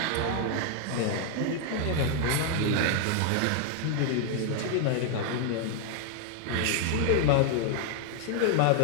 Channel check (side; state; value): both; different; correlation 0.00